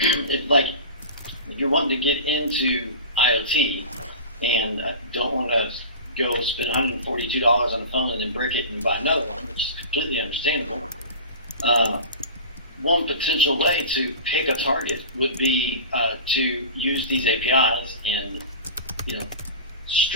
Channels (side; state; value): both; inverted; correlation -0.34